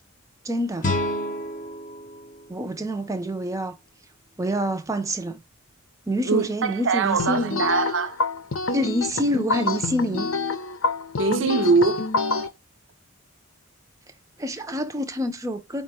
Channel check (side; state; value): both; normal; correlation 0.25